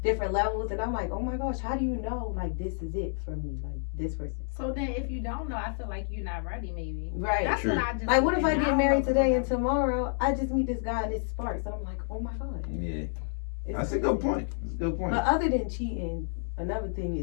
different levels. And I'm like, oh my gosh, how do you know, like, this is it for me, like, this person? So then if you don't know, I feel like you're not ready, maybe. Right. That's what I just like, what if I get married today and tomorrow I just meet this guy and it sparks? And I'm like, oh my God. Yeah. That's a good point. That's a good point. But other than cheating, another thing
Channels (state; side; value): silent; right; 58 dB below the other